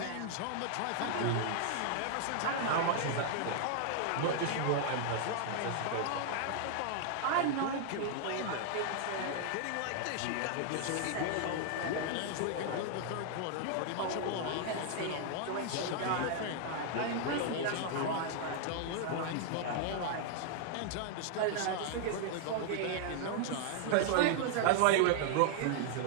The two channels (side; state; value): both; different; correlation 0.00